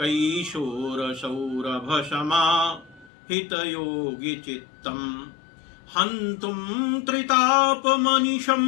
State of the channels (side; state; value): right; drops out; at 3.1 s